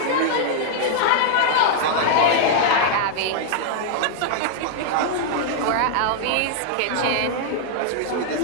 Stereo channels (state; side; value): different; both; correlation -0.01